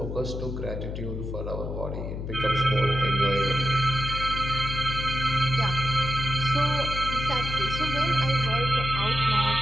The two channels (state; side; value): noise; left; hum, 5 dB below the sound